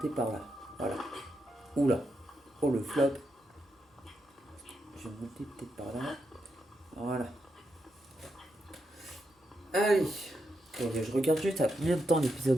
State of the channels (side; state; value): both; normal; correlation 0.84